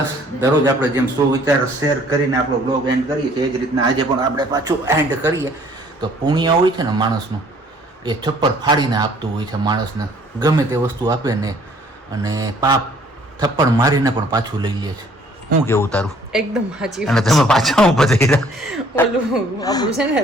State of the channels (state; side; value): normal; both; correlation 0.58